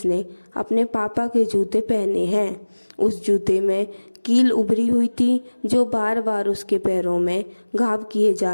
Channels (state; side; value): inverted; both; correlation -1.00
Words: अपने पापा के जूते पहने हैं। उस जूते में कील उभरी हुई थी जो बार बार उसके पैरों में घाव किए